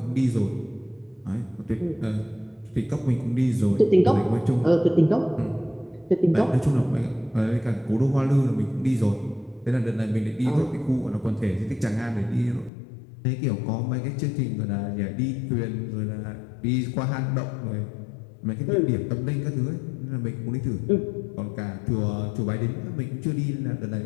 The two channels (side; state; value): right; drops out; at 12.7 s